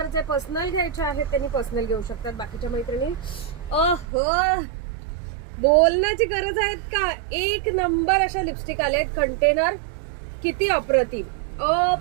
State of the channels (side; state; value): left; drops out; at 4.0 s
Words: पर्सनल घ्यायचे आहेत, त्यांनी पर्सनल घेऊ शकतात. बाकीच्या मैत्रिणी बोलण्याची गरज आहेत का? एक नंबर अशा लिपस्टिक आले आहेत. कंटेनर किती